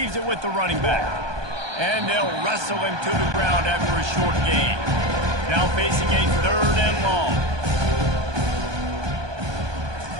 it with the running back. And they'll wrestle him to the ground after a short gain. Now facing a third and long.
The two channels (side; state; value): left; late; 1.2 ms